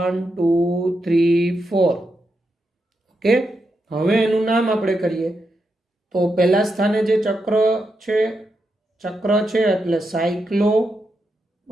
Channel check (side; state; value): both; normal; correlation 0.85